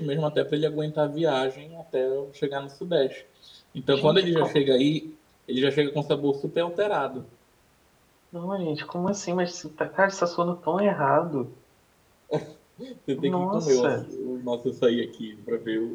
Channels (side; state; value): both; identical; correlation 1.00